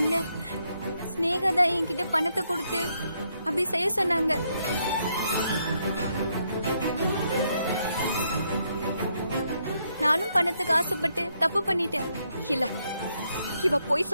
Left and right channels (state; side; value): inverted; both; correlation -0.76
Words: ஸ்னேகா தான் என்கிட்ட பணத்தை கொடுத்து அப்படி செய்ய சொன்னாங்க. நானும் பணத்துக்கு ஆசைப்பட்டு தப்பு பண்ணிட்டேன். இல்ல, இவ போய்